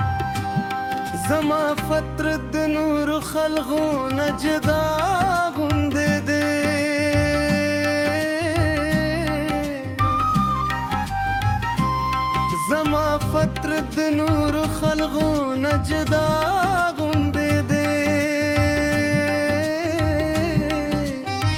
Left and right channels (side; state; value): both; identical; correlation 1.00